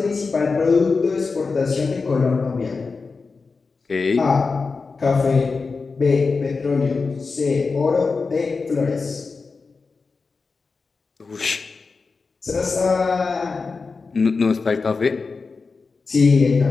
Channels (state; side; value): quieter; right; 4.4 dB